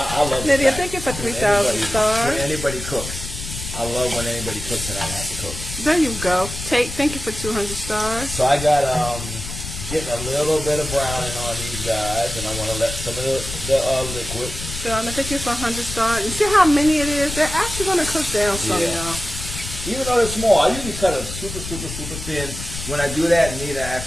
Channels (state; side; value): noise; left; rumble, 8 dB below the sound